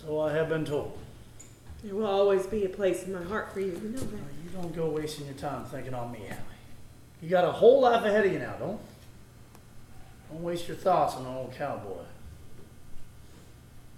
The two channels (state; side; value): identical; both; correlation 1.00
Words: I have been told. There will always be a place in my heart for you. You know that. You don't go wasting your time thinking on me, Hallie. You got a whole life ahead of you now, don't waste your thoughts on an old cowboy.